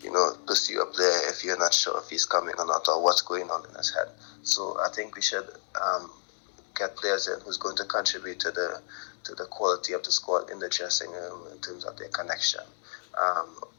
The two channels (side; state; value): right; silent; 58 dB below the other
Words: pursue a player if you're not sure if he's coming or not or what's going on in his head. So I think we should get players in who's going to contribute to the quality of the squad in the dressing room in terms of their connection